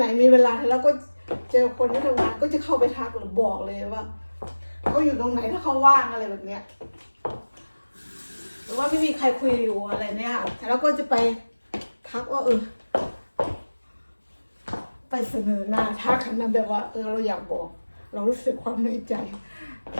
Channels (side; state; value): both; inverted; correlation -1.00